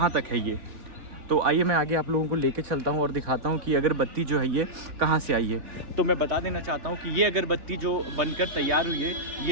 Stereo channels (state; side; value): late; left; 3.4 ms